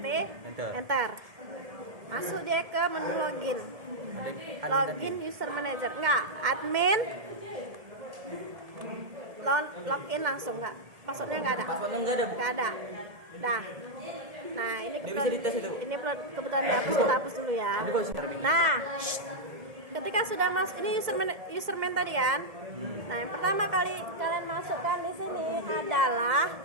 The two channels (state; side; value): late; left; 1.7 ms